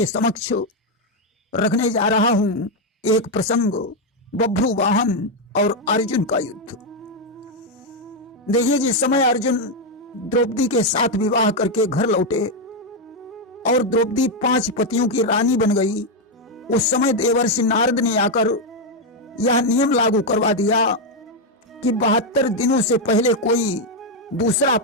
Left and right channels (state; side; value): normal; both; correlation 0.03